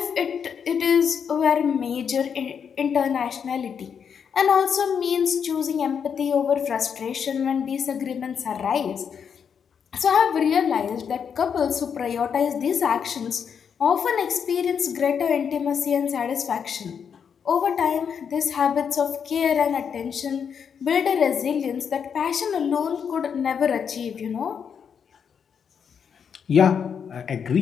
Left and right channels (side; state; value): right; quieter; 7.2 dB